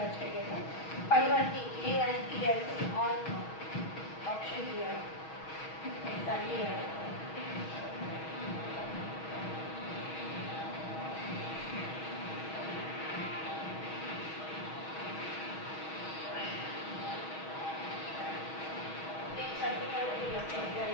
చేయను. పైవన్నీ ఏఐపిఎల్సి ఆన్ ఆప్షన్ చేయాలి. దాన్ని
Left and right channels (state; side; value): late; right; 6.3 ms